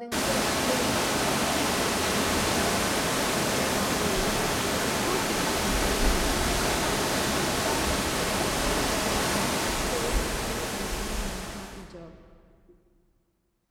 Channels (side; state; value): both; identical; correlation 1.00